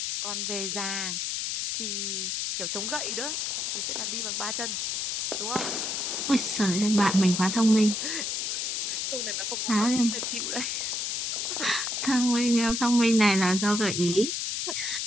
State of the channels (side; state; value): left; noise; hiss, 1 dB below the sound